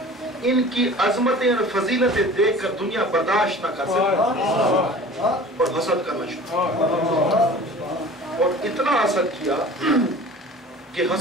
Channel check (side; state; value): both; normal; correlation 0.43